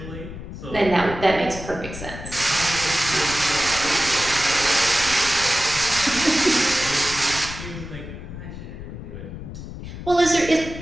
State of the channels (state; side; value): noise; left; rumble, 11 dB below the sound